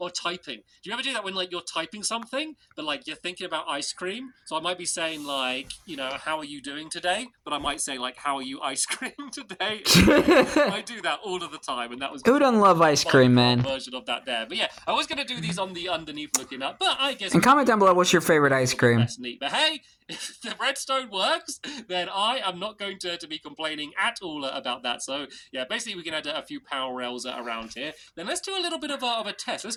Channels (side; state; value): both; identical; correlation 1.00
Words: typing. Do you ever do that when, like, you're typing something, but, like, you're thinking about ice cream? So I might be saying, like, you know, how are you doing today? But I might say, like, how are you ice cream today? I do that all of the time, and that was... Who doesn't love ice cream, man? ...version of that there. But yeah, I was going to do these on the underneath looking up, but I guess... And comment down below what's your favorite ice cream. That's neat. But hey, if the redstone works, then I am not going to be complaining at all about that. So yeah, basically we can add a few power rails around here. Then let's do a little bit of a test. Let's